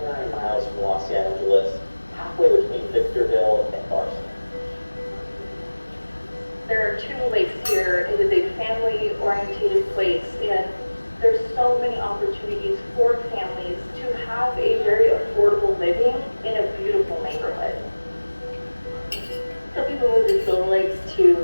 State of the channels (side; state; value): both; inverted; correlation -1.00